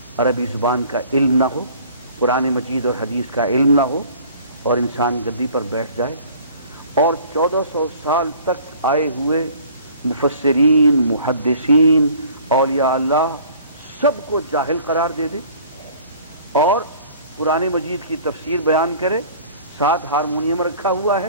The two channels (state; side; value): inverted; both; correlation -0.50